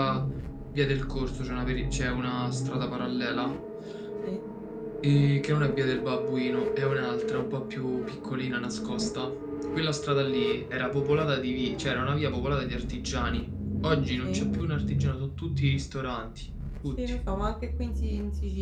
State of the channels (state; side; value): identical; both; correlation 1.00